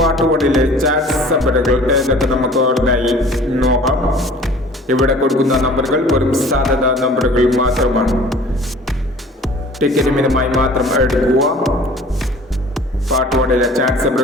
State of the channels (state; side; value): normal; both; correlation 0.47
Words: 1-ലെ ചാറ്റ് നമ്പറുകൾ ഏതൊക്കെ നമുക്ക് ഓർമ്മയായി നോക്കാം. ഇവിടെ കൊടുക്കുന്ന നമ്പറുകൾ വെറും സാധ്യത നമ്പറുകൾ മാത്രമാണ്. ടിക്കറ്റ് മിതമായി മാത്രം എടുക്കുക. പാർട്ട് 1-ലെ ചാറ്റ്